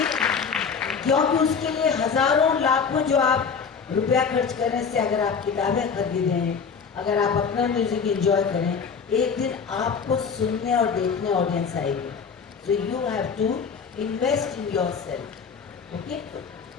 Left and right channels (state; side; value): quieter; right; 5.9 dB